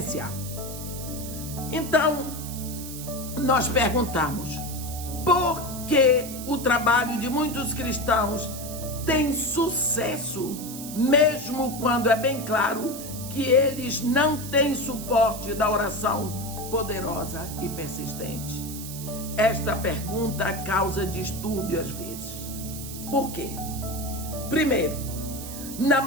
Então, nós perguntamos: por que o trabalho de muitos cristãos tem sucesso, mesmo quando é bem claro que eles não têm suporte da oração poderosa e persistente? Esta pergunta causa distúrbio às vezes. Por quê? Primeiro, na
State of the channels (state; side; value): noise; right; hiss, 10 dB below the sound